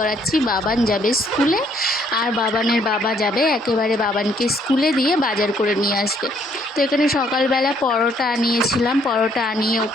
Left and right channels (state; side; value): normal; both; correlation 0.67